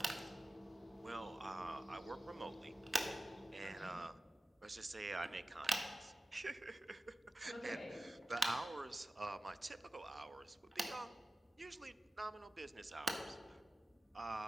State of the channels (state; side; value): normal; both; correlation 0.96